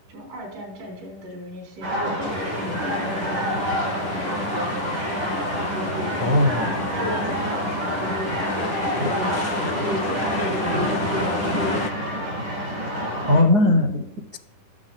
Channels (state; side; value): late; left; 10 ms